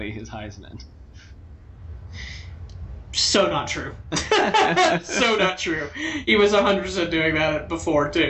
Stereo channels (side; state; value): both; identical; correlation 1.00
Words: his Heisman. So not true. So not true. He was 100% doing that before,